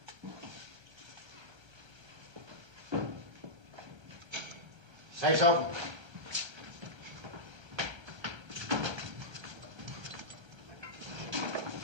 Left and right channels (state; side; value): late; left; 1.3 ms